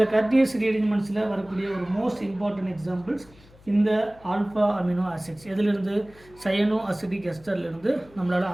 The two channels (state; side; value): noise; left; hum, 25 dB below the sound